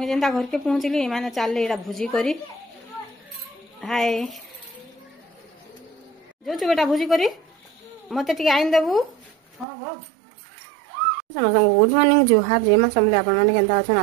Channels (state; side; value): drops out; left; at 9.7 s